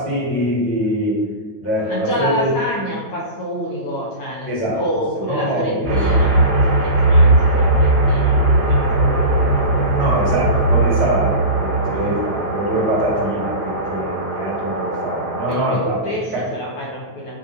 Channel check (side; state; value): right; late; 8.7 ms